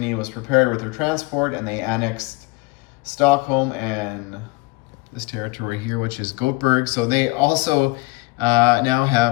was prepared with their transport, and they annexed Stockholm and this territory here, which is Gothenburg. So they also now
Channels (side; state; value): right; quieter; 24.5 dB